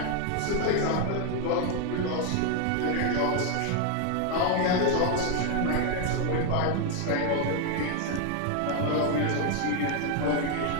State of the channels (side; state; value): both; different; correlation 0.01